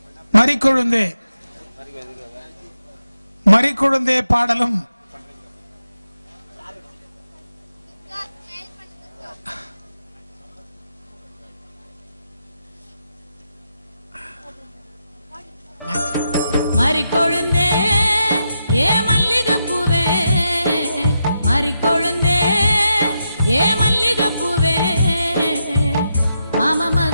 மறிக்குழுந்தே மறிக்குழுந்தே பாடலும் மறிக்கொழுந்தே ஏ மல்லிகைப்பூவே மறிக்கொழுந்தே ஏ மல்லிகைப்பூவே மாமா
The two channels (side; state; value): both; inverted; correlation -0.85